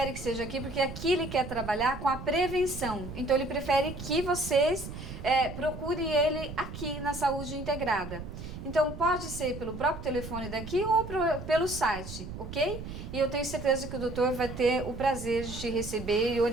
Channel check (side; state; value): right; noise; rumble, 10 dB below the sound